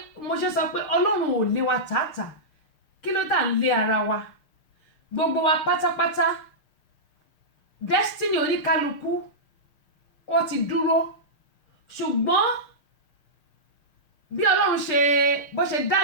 mo ṣe sọ pé Ọlọ́run ò lé wa tààtà kí ló tà ń lé ara wa gbogbo wa pátápátá destiny oníkálukú ó ti dúró ṣùgbọ́n bí Ọlọ́run ṣe bó ṣe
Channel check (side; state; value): right; late; 6.6 ms